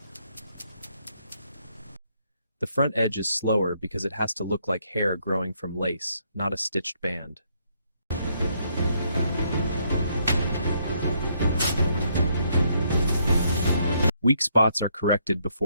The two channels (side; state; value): both; inverted; correlation -0.72